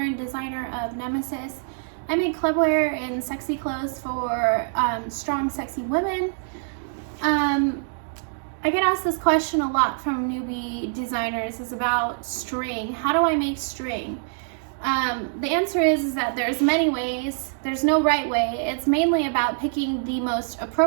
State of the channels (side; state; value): left; silent; digital silence